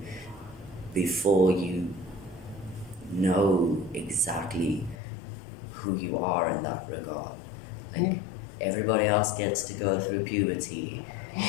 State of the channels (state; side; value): drops out; right; at 5.0 s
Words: before you know exactly who you are in that regard. Like, everybody else gets to go through puberty.